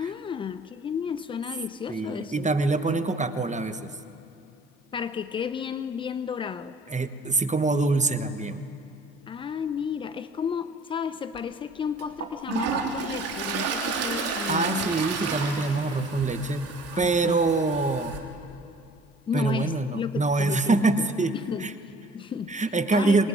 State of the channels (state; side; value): normal; both; correlation 0.51